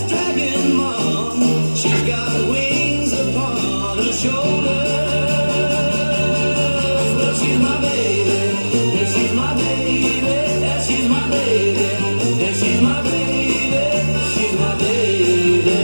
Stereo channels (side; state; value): both; inverted; correlation -1.00